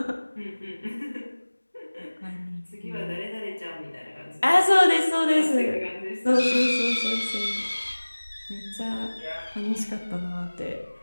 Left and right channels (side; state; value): both; inverted; correlation -1.00